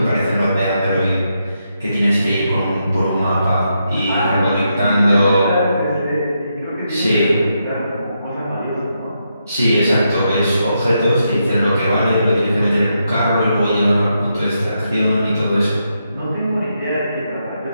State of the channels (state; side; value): inverted; both; correlation -0.82